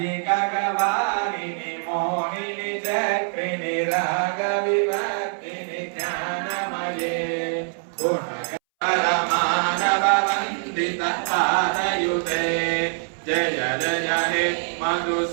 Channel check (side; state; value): left; silent; 62 dB below the other